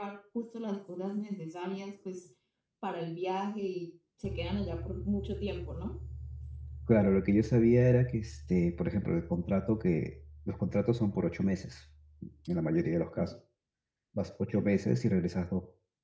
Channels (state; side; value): identical; both; correlation 1.00